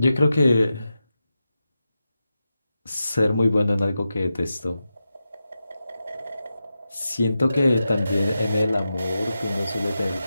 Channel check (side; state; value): both; inverted; correlation -0.90